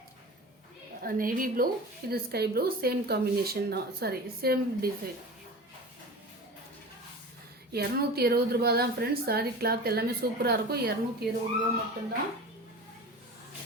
நேவி ப்ளூ, இது ஸ்கை ப்ளூ. சேம் காம்பினேஷன் தான். Same design. 220 ரூபா தான் ஃப்ரெண்ட்ஸ். சாரீ கிளாத் எல்லாமே சூப்பராக இருக்கும். 220 ரூபா மட்டும்தான்.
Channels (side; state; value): both; normal; correlation 0.34